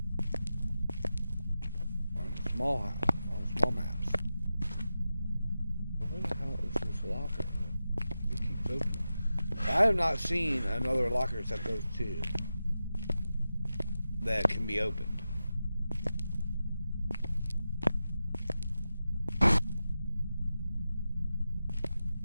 On the small house, on small maps. But where the hell is this locker that keeps opening? I have not seen another locker except those two that can be opened. Okay,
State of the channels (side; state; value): both; inverted; correlation -0.92